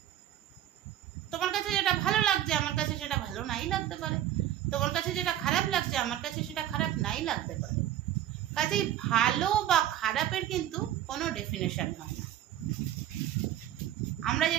তোমার কাছে যেটা ভালো লাগছে আমার কাছে সেটা ভালো নাই লাগতে পারে, তোমার কাছে যেটা খারাপ লাগছে আমার কাছে সেটা খারাপ নাই লাগতে পারে। কাজেই ভালো বা খারাপের কিন্তু কোনো ডেফিনেশন হয় না। আমরা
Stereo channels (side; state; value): left; quieter; 12.0 dB